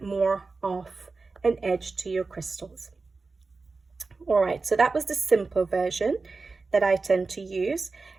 more of an edge to your crystals. All right, so that was the simple version that I tend to use.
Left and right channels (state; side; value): quieter; left; 4.0 dB